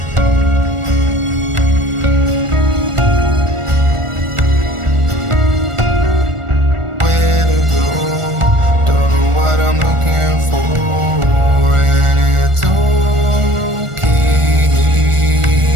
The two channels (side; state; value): left; late; 1.4 ms